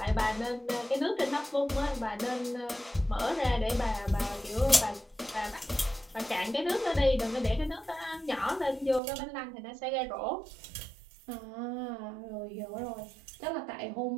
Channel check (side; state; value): left; drops out; at 9.0 s